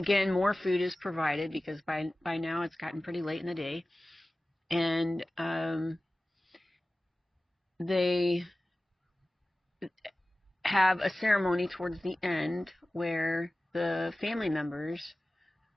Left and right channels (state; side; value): normal; both; correlation 0.96